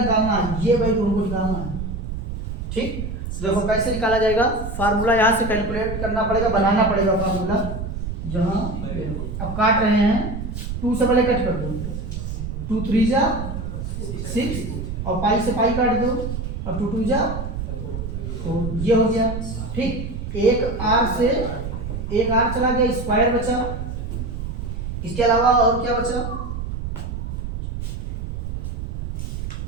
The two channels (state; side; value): noise; right; rumble, 5 dB below the sound